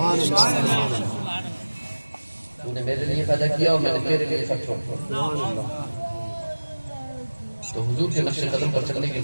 تو نے میرے لیے پیدا کیا اور میں نے تیرے لیے سب چھوڑ دیا. تو حضور کے نقش قدم پر چلنے کے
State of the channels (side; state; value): both; inverted; correlation -1.00